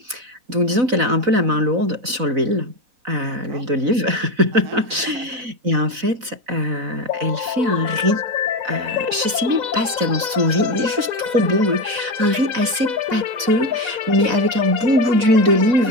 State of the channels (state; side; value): late; left; 4.0 ms